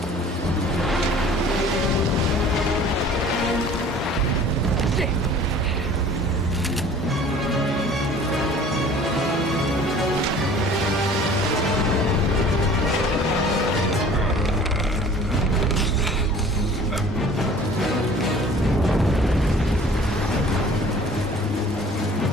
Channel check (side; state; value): both; normal; correlation 0.48